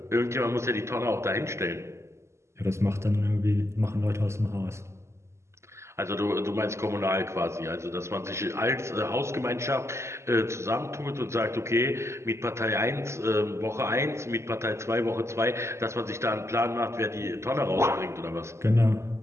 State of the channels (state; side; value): late; left; 0.13 ms